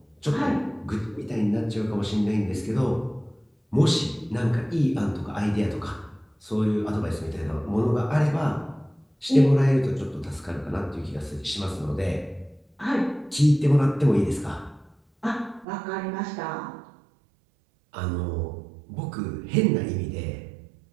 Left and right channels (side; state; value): left; drops out; at 15.7 s